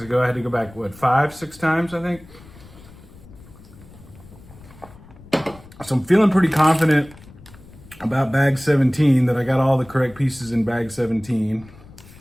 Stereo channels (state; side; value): noise; left; rumble, 21 dB below the sound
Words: ago, I had to go back, what, 5, 6 times, I think? So I'm feeling pretty confident about bag 17, that I got all the correct pieces in bag 17.